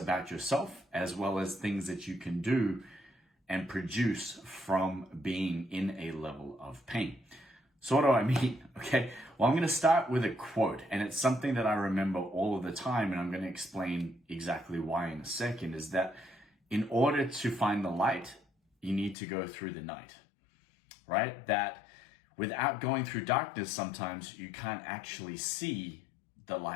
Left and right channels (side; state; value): right; drops out; at 19.2 s